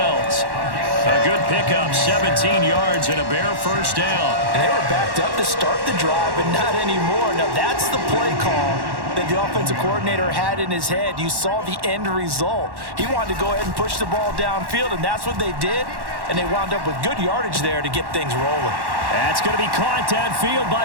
A good pickup, 17 yards and a Bear 1st down. And they were backed up to start the drive, but not anymore. Now that's the play call that the offensive coordinator had in his head. You saw the end result. He wanted to go ahead and push the ball downfield, and that's what they did. And they wound up with good yardage there to get things rolling. That's going to be caught downfield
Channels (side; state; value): left; late; 1.1 ms